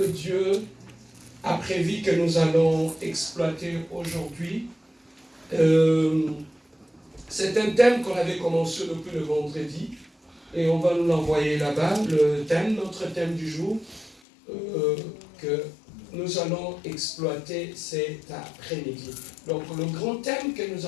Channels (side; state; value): right; drops out; at 14.2 s